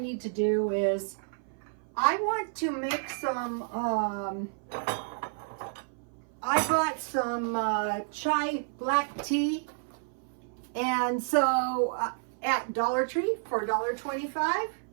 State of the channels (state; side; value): silent; left; 56 dB below the other